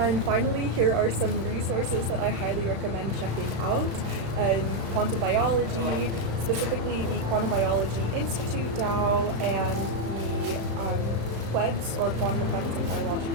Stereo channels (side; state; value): left; late; 35 ms